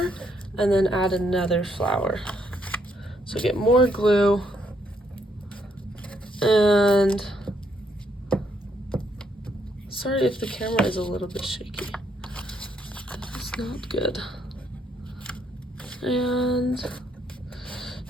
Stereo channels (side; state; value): both; normal; correlation 0.73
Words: and then add another flower. So get more glue, and sorry if the camera is a little bit shaky. It's not good. And